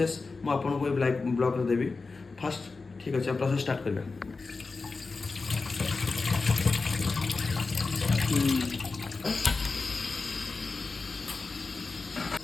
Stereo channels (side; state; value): right; quieter; 4.1 dB